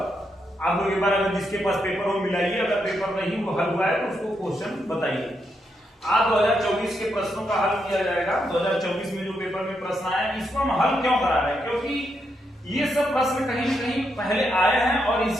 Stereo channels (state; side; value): normal; both; correlation 0.81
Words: आप लोग एक बार अगर जिसके पास पेपर हो मिलाइए, अगर पेपर नहीं वो हल हुआ है तो उसको क्वेश्चन बताइए। आज 2024 के प्रश्नों का हल किया जाएगा। 2024 में जो पेपर में प्रश्न आए इसको हम हल क्यों करा रहे हैं, क्योंकि ये सब प्रश्न कहीं न कहीं पहले आए हैं और